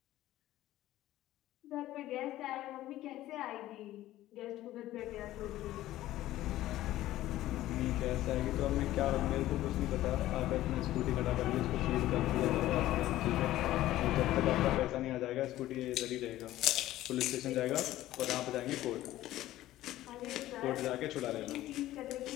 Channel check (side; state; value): right; quieter; 14.9 dB